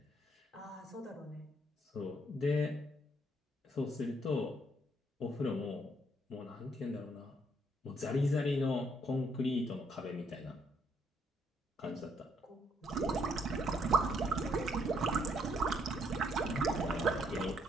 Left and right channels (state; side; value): normal; both; correlation 0.70